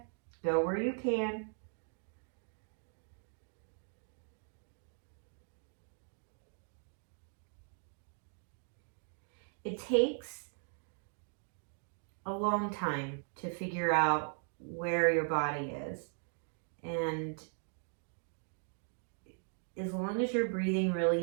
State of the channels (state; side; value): silent; left; 52 dB below the other